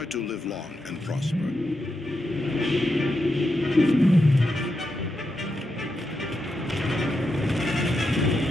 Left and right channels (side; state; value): both; normal; correlation 0.86